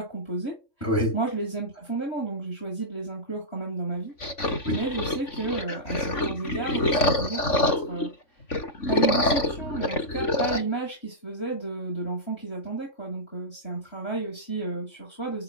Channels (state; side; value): late; right; 3.5 ms